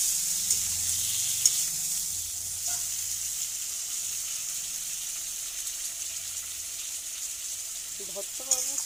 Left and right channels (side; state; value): both; normal; correlation 0.96